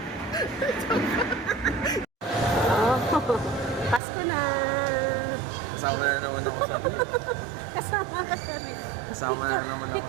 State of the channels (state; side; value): drops out; left; at 4.0 s